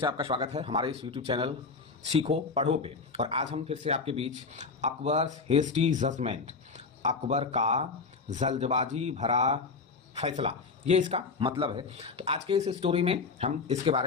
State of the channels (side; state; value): right; quieter; 4.5 dB